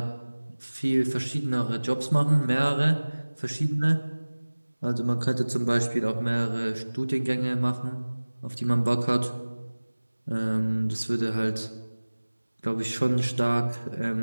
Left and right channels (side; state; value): both; inverted; correlation -1.00